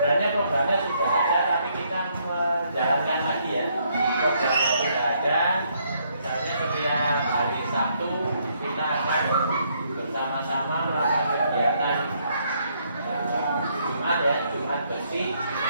programnya sudah ada, tapi kita menjalankan lagi ya. Programnya sudah ada. Misalnya setiap hari Sabtu kita akan bersama-sama melakukan kegiatan Jumat ya, Jumat bersih.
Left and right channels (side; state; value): both; inverted; correlation -0.71